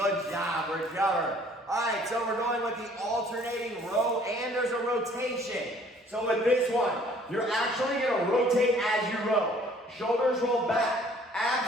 job. Recover. All right, so we're going with the alternating row, and there's a rotation. So with this one, you're actually going to rotate as you row. Shoulders roll back,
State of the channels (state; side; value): normal; both; correlation 0.57